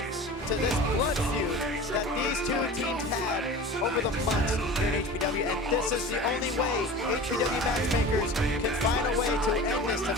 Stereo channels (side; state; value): both; normal; correlation 0.36